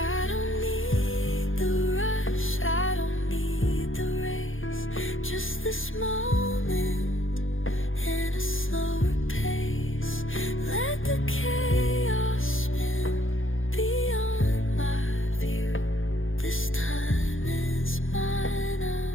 don't need the rush, I don't need the race, just this moment in a slower pace. Let the chaos spin beyond my view. This time is mine,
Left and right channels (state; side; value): late; right; 0.59 ms